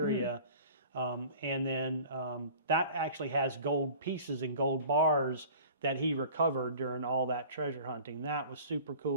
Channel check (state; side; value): inverted; both; correlation -0.45